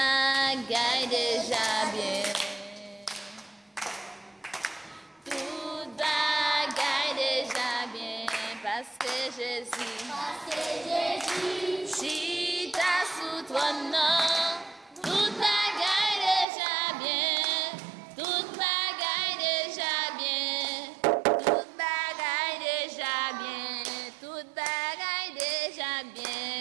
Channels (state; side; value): drops out; left; at 16.4 s